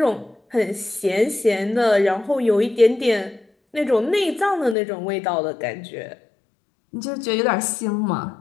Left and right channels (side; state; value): right; drops out; at 4.8 s